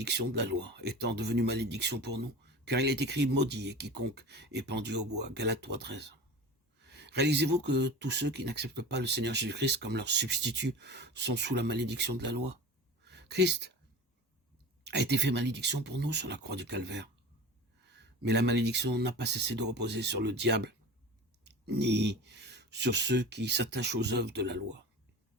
de la loi, étant devenu malédiction pour nous, car il est écrit « Maudit est quiconque est pendu au bois » Galates 3,13. Réalisez-vous que tous ceux qui n'acceptent pas le Seigneur Jésus-Christ comme leur substitut sont sous la malédiction de la loi? Christ a été fait malédiction pour nous sur la croix du calvaire. Mais la malédiction n'a pas cessé de reposer sur le diable, ni sur ceux qui s'attachent aux œuvres de la loi.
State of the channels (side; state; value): both; normal; correlation 0.34